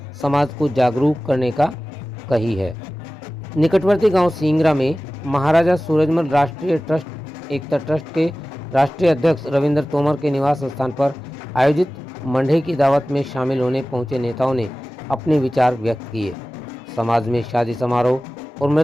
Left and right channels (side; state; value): both; normal; correlation 0.96